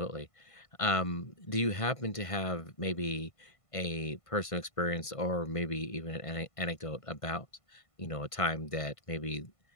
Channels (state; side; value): late; right; 1.5 ms